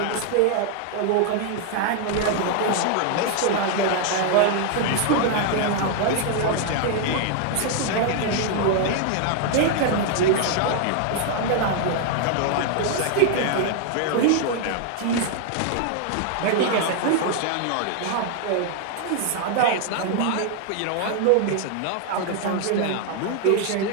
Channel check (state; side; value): different; both; correlation 0.00